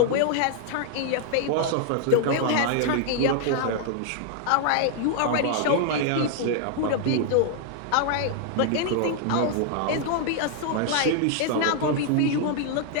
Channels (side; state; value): both; different; correlation 0.00